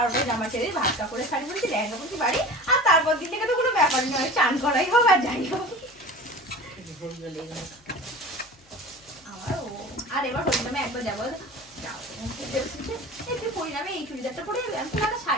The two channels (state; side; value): noise; left; hum, 29 dB below the sound